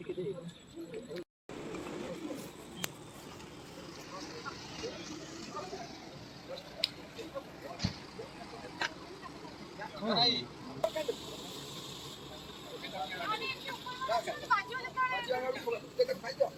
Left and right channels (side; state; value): both; identical; correlation 1.00